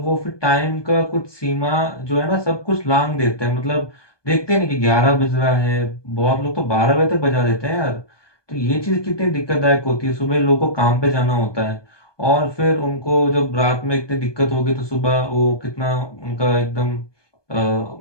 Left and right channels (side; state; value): right; late; 1.2 ms